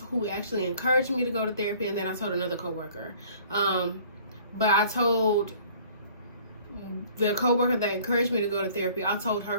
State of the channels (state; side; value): inverted; both; correlation -0.53